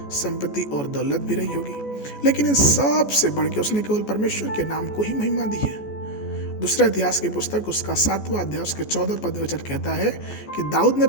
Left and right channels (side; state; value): right; late; 14 ms